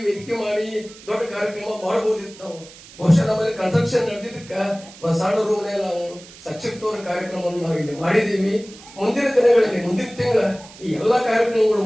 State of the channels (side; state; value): right; noise; hiss, 20 dB below the sound